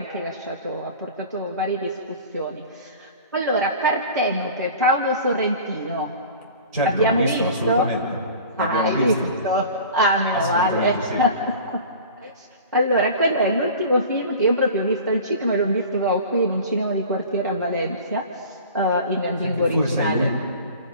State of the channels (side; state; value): both; inverted; correlation -0.40